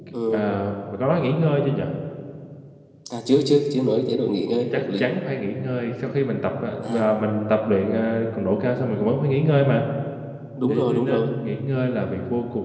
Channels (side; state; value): both; identical; correlation 1.00